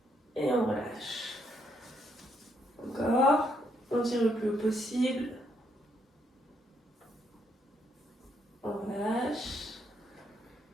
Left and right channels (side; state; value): both; normal; correlation 0.74